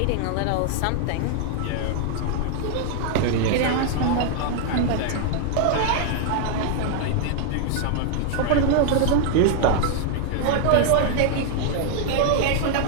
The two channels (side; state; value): both; different; correlation 0.00